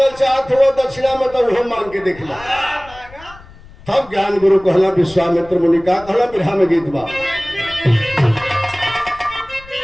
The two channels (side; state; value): left; noise; rumble, 21 dB below the sound